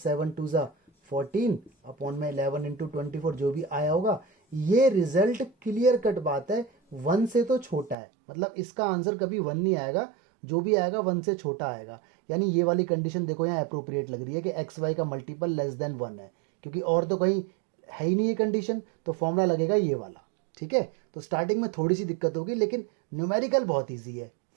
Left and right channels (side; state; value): left; drops out; at 8.0 s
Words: 2 ज़ा 14 अपॉन में 11 इंटू 24, जो भी आया होगा। ये रिजल्ट क्लियर कट बात है, 1 से तो छोटा है, मतलब इसका आंसर कभी 1 नहीं आएगा, जो भी आएगा 1 से छोटा आएगा। यानी ये वाली कंडीशन देखो यहाँ अप्रोप्रिएट लग रही है कि एक्स वाई का मल्टीपल लेस देन 1 है, क्योंकि और तो कहीं है ही नहीं ये कंडीशन, तो फॉर्मूला लगेगा ये वाला, ठीक है। तो स्टार्टिंग में थोड़ी सी दिक्कत होगी, लेकिन न्यूमेरिकल बहुत ईजी है,